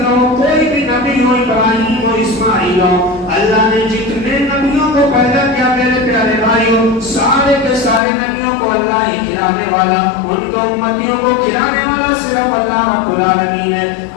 ہو, کوئی بھی نبی ہو, ابراہیم ہو, اسماعیل ہو, اللہ نے جتنے نبیوں کو پیدا کیا میرے پیارے بھائیوں, سارے کے سارے نبیوں کو اللہ ہی کھلانے والا, ان کے امتیوں کو کھلانے والا صرف اللہ رب العالمین ہے.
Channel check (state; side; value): drops out; right; at 8.0 s